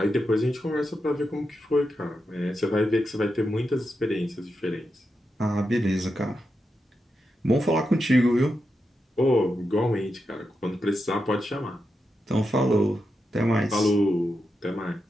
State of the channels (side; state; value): both; normal; correlation 0.87